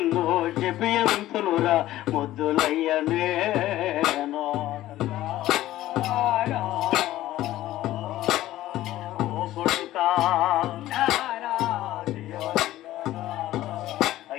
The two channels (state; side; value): quieter; right; 14.8 dB